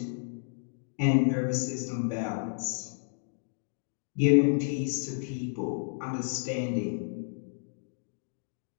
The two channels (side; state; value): right; silent; digital silence